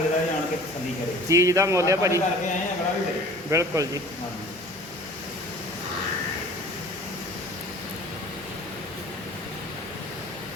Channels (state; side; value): normal; both; correlation 0.46